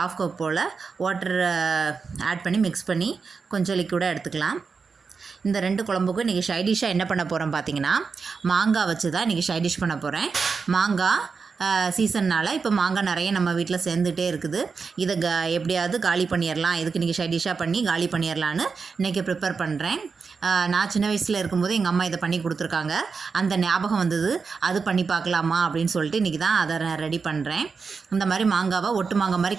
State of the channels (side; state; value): left; quieter; 5.1 dB